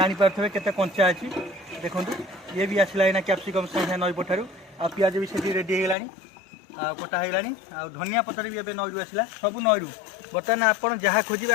के कंचा अच्छी देखु ये भी आसला ना कैप्सिकम सागे नई पठार आ पिज भी से रेडी होगा कटा होगा धनिया पतर भी एवं नईरू आसला सब नईरू बर्तमान आप जहाँ खोजे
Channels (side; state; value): right; drops out; at 6.0 s